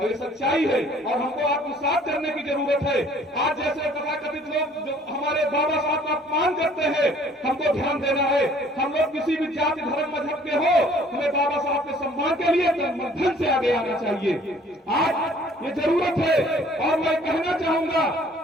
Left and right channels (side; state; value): both; normal; correlation 0.56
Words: ये सच्चाई है और हमको आत्मसात करने की जरूरत है। आज जैसे तथाकथित लोग जो हमारे बाबा साहब का अपमान करते हैं, हमको ध्यान देना है। हम लोग किसी भी जाति धर्म मजहब के हो, हमें बाबा साहब के सम्मान के लिए मध्यम से आगे आना चाहिए। आज ये जरूरत है। और मैं कहना चाहूंगा,